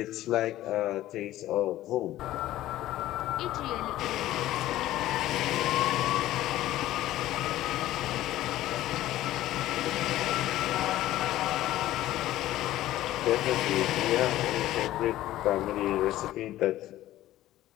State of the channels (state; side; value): quieter; right; 14.7 dB